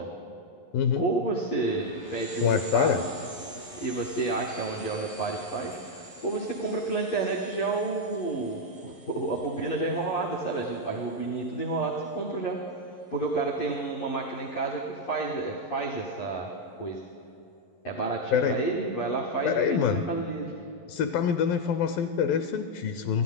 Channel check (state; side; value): late; right; 11 ms